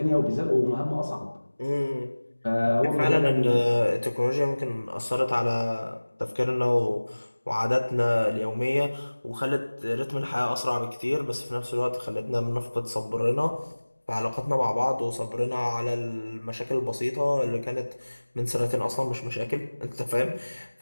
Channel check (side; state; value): both; inverted; correlation -1.00